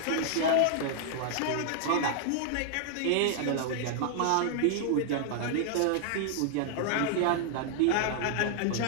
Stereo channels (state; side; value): different; both; correlation -0.01